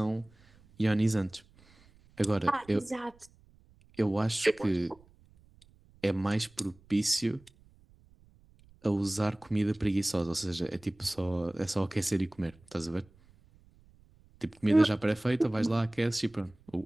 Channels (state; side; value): noise; right; rumble, 28 dB below the sound